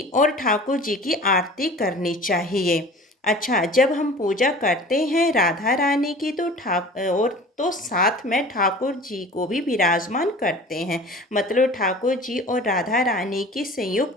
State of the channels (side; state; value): both; normal; correlation 0.42